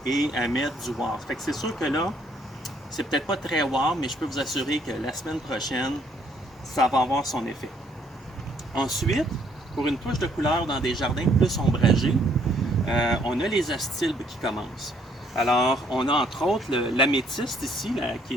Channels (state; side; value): normal; both; correlation 0.66